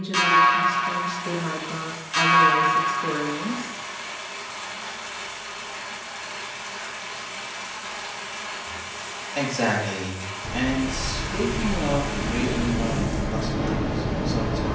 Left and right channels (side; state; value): both; identical; correlation 1.00